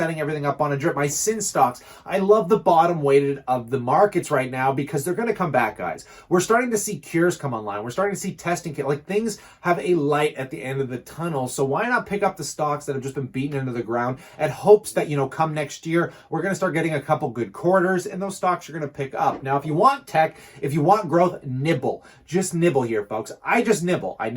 everything up on a drip. My sin stocks, I love the bottom weighted of the markets right now, because they're going to come back, guys. We're starting to see cures come online. We're starting to see testing kit. Like, things have a light at the end of the tunnel. So why not pick up the stocks that have just been beaten into the ground at hopes that, come next year, we're going to start getting a couple good quarters, and those stocks are going to pick up. Now, if you want tech, if you want growth, nibble. Just nibble here, folks. I just nibble. I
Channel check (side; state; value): both; identical; correlation 1.00